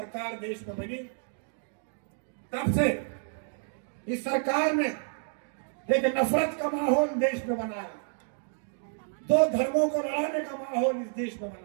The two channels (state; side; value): silent; left; digital silence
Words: देश में बनी तब से इस सरकार ने एक नफरत का माहौल देश में बनाया, दो धर्मों को लड़ाने का माहौल इस देश में